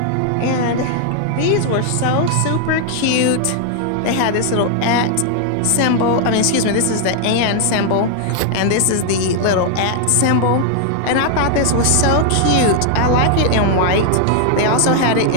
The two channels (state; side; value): different; both; correlation 0.00